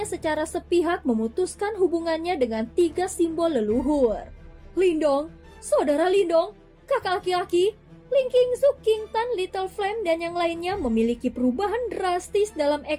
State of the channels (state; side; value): identical; both; correlation 1.00